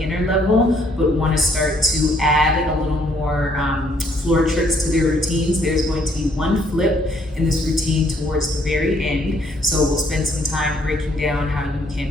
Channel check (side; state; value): both; normal; correlation 0.67